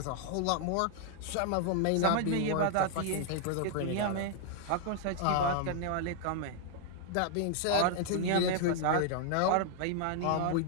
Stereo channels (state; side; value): different; both; correlation 0.00